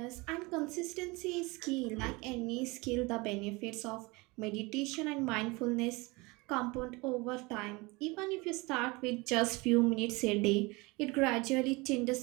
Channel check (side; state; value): left; quieter; 25.0 dB